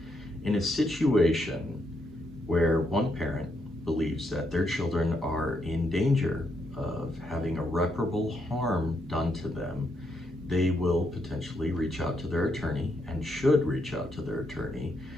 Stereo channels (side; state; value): both; normal; correlation 0.78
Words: In a situation where one parent believes that their children are in danger of having irreparable harm done to them, they will potentially reach out to their attorney and should reach out to their attorney